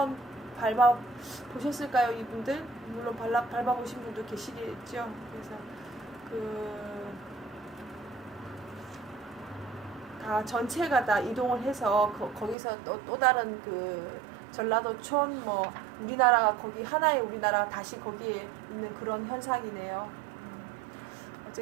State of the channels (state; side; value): drops out; left; at 12.6 s